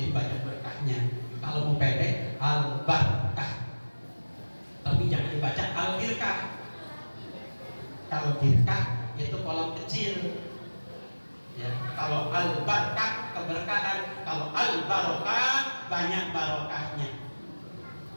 banyak berkahnya. Kalau mau pendek Al-Barokah. Tapi jangan dibaca Al-Birkah. Kalau birkah itu kolam kecil. Ya, kalau Al-Barokah keberkahan, kalau Al-Barokah banyak barokahnya.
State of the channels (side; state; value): both; inverted; correlation -1.00